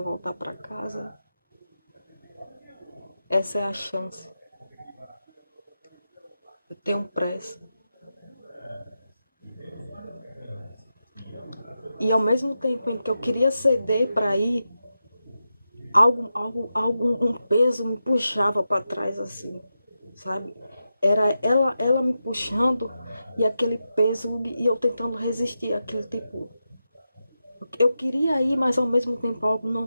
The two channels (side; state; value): both; inverted; correlation -0.89